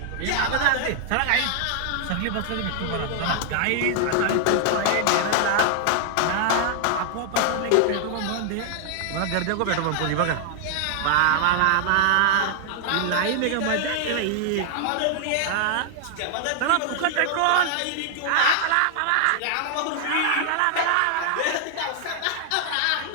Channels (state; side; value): different; both; correlation 0.00